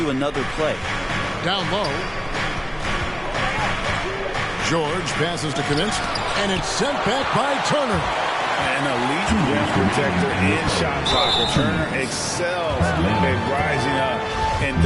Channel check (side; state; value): both; identical; correlation 1.00